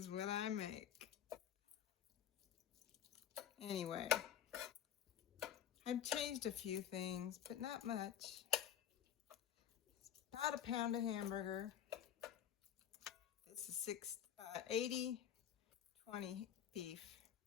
what I make. Anyway, I've changed a few things, but not much. It's about a pound of hamburger. This is 80-20 beef.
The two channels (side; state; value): right; quieter; 9.8 dB